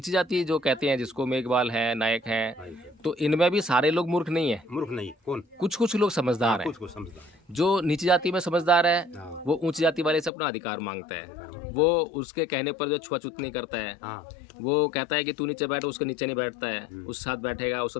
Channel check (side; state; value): right; drops out; at 10.3 s